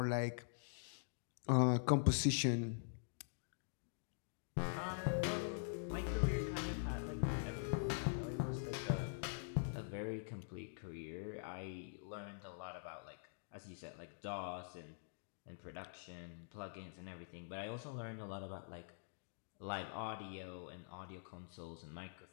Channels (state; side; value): silent; right; digital silence